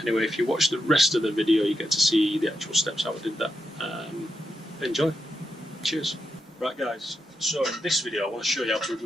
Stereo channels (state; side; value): normal; both; correlation 0.85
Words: Anyway, if you watch the rest of the video, you get to see the actual steps how I did that. Enjoy. Cheers. Right guys, so in this video I want to show you how to